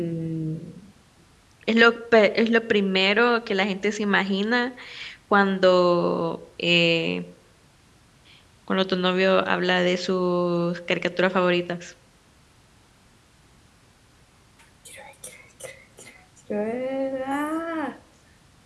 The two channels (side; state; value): both; identical; correlation 1.00